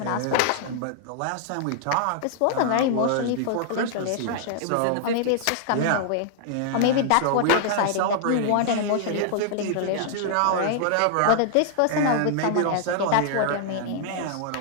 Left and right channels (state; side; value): different; both; correlation -0.01